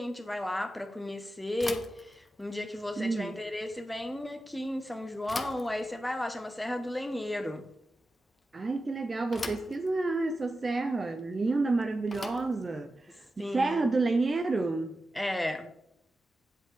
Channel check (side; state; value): both; normal; correlation 0.92